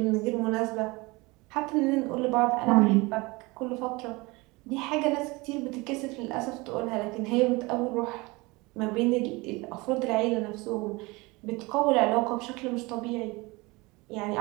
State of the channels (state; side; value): quieter; left; 24.1 dB